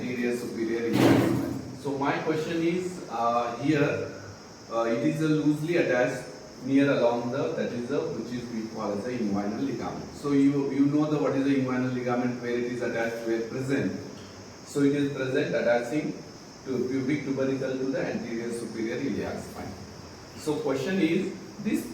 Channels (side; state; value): both; identical; correlation 1.00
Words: superior iliac. So my question is here. It is loosely attached near along the, that is the, which is we call as the inguinal ligament. So you know the what is the inguinal ligament, where it is attached, where present. So it is present attaching to pubic tubercle to the anterior superior iliac spine. So question is, this